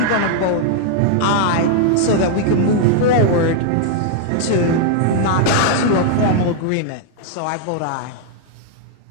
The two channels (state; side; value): different; both; correlation -0.01